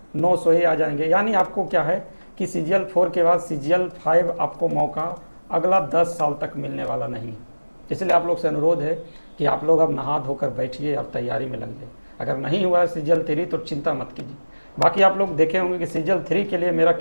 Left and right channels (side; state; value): both; inverted; correlation -1.00